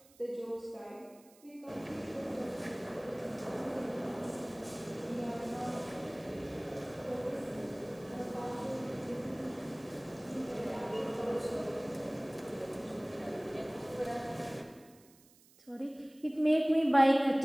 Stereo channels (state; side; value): noise; right; hiss, 27 dB below the sound